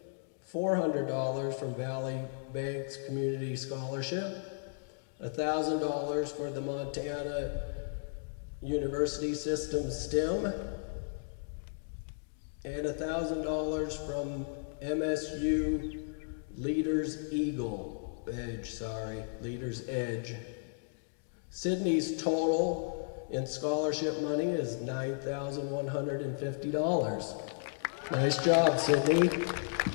$400 from Valley Banks Community Scholarship, $1,000 for the Montana University System STEM, and $1,000 from MSU Leaders Edge. Sydney's total in scholarship money is $9,150. Nice job, Sydney.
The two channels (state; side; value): silent; right; digital silence